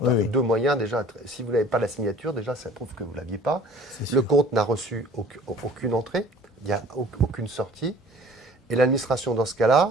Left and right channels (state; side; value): normal; both; correlation 0.48